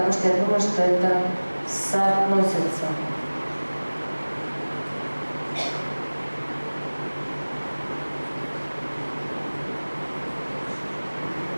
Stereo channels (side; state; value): both; inverted; correlation -1.00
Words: что я думаю, что это соотносится.